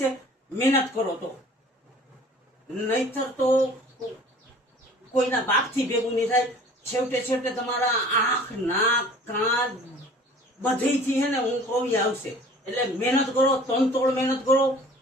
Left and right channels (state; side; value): normal; both; correlation 0.48